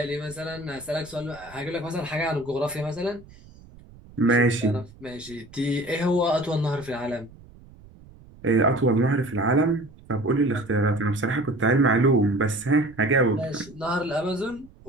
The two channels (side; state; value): right; noise; rumble, 22 dB below the sound